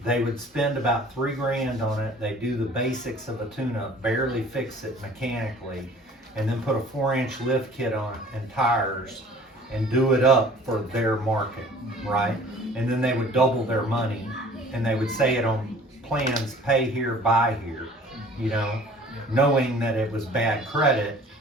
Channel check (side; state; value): both; normal; correlation 0.49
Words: They would spend about $3 grand on it. They do the basics of a tune-up, barely fix it mechanically, and then put a 4-inch lift kit on it and tires. and do it up for their market, right? And then they would double their money, and they would say it on plans, pay here, buy here, you know, knowing that it was bad credit.